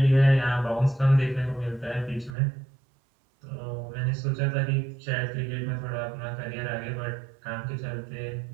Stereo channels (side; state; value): left; drops out; at 2.3 s